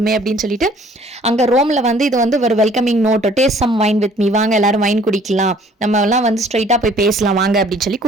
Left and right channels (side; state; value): both; normal; correlation 0.56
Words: அப்படின்னு சொல்லிட்டு அங்கே ரோமில் வந்து இது வந்து ஒரு welcoming note, taste some wine with me, வாங்க எல்லாரும் வைன் குடிக்கலாம், நம்ம எல்லாம் வந்து ஸ்ட்ரைட்டாக போய் பேசலாம் வாங்க அப்படின்னு சொல்லி